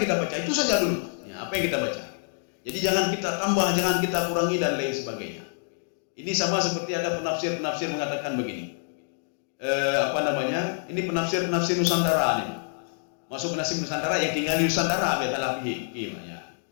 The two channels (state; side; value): silent; right; digital silence